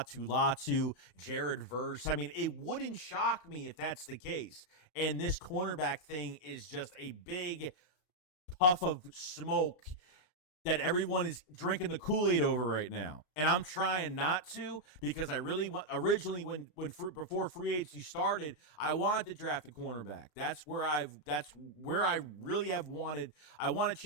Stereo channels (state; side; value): late; right; 33 ms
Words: Latu, Jared Verse. It wouldn't shock me if that's the case. And this cornerback thing is just a big puff of smoke that everyone is drinking the Kool-Aid over right now. And I'm trying not to because I really want, originally before free agency started, I wanted to draft a cornerback. That's where I really have wanted. I want to